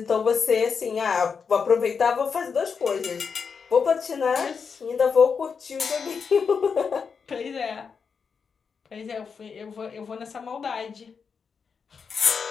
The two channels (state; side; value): quieter; right; 5.9 dB